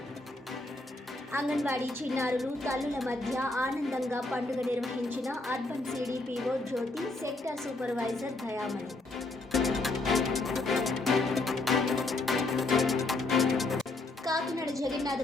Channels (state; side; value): quieter; right; 3.0 dB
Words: అంగన్వాడీ చిన్నారులు తల్లుల మధ్య ఆనందంగా పండుగ నిర్వహించిన అర్బన్ సిడిపిఓ జ్యోతి, సెక్టర్ సూపర్వైజర్ దయామణి. కాకినాడ